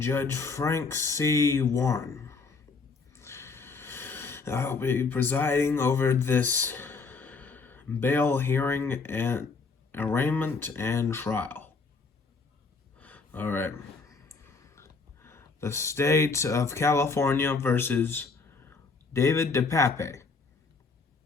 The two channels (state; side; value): quieter; right; 4.4 dB